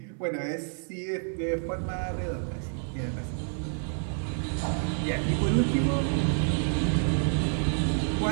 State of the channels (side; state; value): left; silent; 57 dB below the other